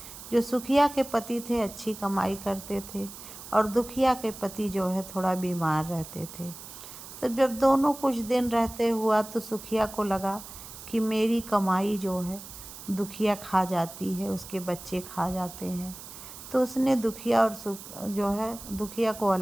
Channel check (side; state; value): right; noise; hiss, 14 dB below the sound